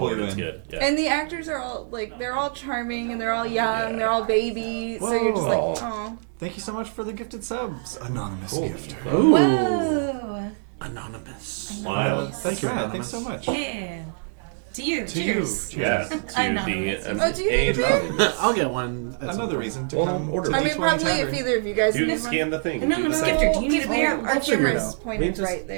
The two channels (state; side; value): silent; left; digital silence